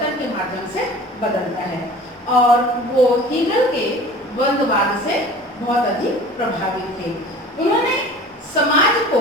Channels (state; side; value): normal; both; correlation 0.42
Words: के माध्यम से बदलता है। और वो हीगल के द्वंद्ववाद से बहुत अधिक प्रभावित थे। उन्होंने समाज को